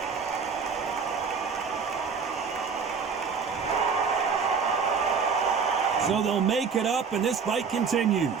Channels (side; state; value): left; quieter; 5.7 dB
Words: So they'll make it up, and this fight continues.